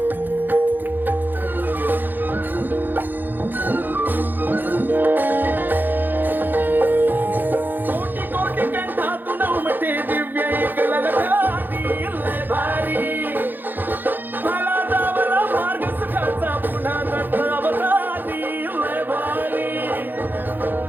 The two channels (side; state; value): left; late; 0.090 ms